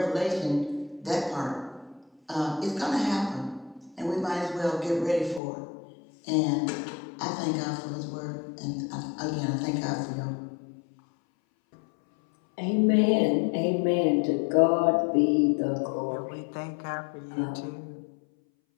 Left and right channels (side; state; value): right; drops out; at 5.4 s